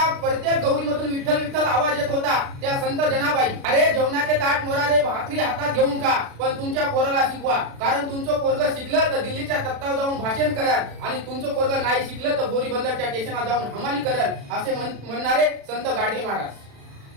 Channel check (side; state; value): left; late; 36 ms